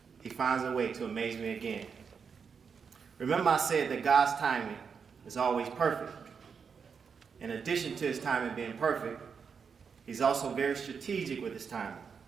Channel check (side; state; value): left; quieter; 6.1 dB